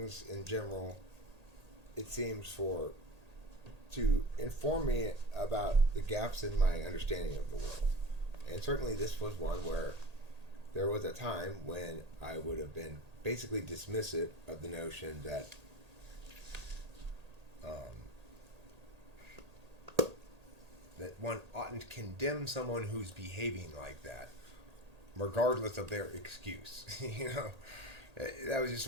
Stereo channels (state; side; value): late; left; 1.8 ms